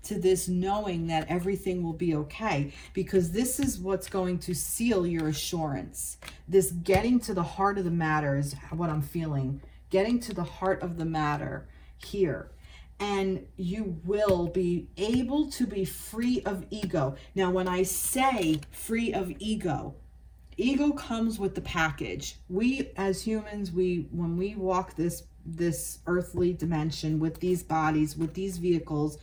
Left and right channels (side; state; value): both; identical; correlation 1.00